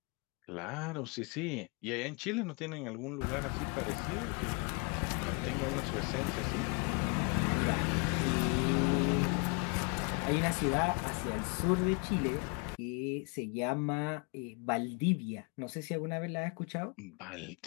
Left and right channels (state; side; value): quieter; right; 33.9 dB